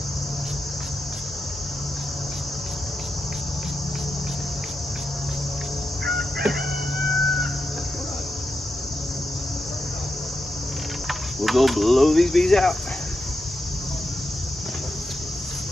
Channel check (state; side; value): normal; both; correlation 0.87